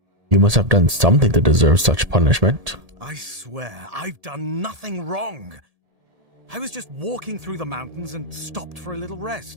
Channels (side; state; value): left; late; 1.7 ms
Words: You must have done something to deserve such punishment. I swear, I've done nothing wrong. I was just walking through the mountains and stopped for a little